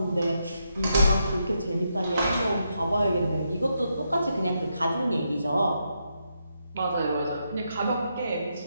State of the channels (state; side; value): inverted; both; correlation -0.81